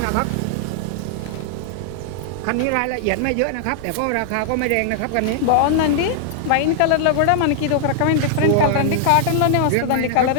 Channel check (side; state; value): both; different; correlation -0.01